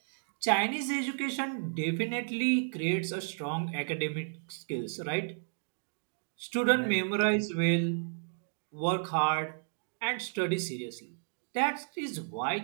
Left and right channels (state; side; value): silent; left; digital silence